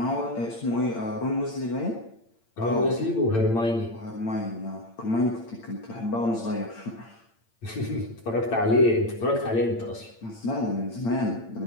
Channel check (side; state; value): right; late; 8.8 ms